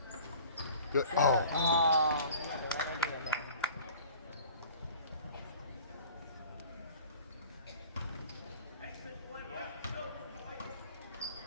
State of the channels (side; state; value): both; inverted; correlation -0.45